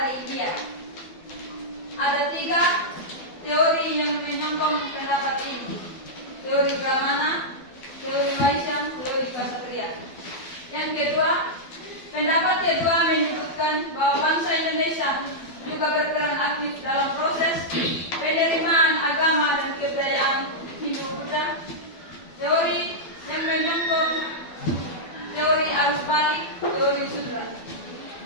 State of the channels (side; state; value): right; late; 12 ms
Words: India. Ada 3 teori yang menyokong pendapat ini: teori Brahmana, teori Vaishya, teori Ksatria. Yang kedua, pendapat kedua menyebutkan bahwa bangsa Indonesia juga berperan aktif dalam proses penerimaan agama dan kebudayaan Hindu-Buddha. Teori yang menyokong teori arus balik, teori Sudra.